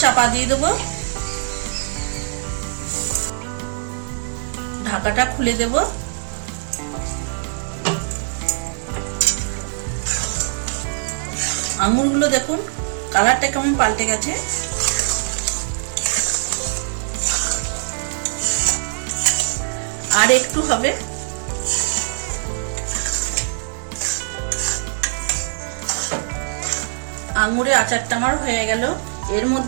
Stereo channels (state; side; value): silent; left; digital silence